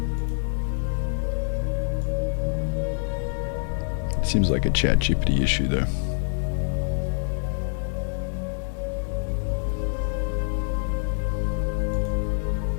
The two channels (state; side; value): silent; right; 61 dB below the other